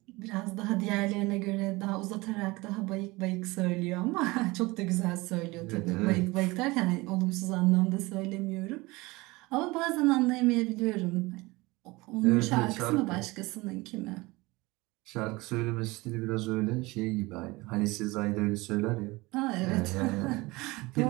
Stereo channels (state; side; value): quieter; left; 22.4 dB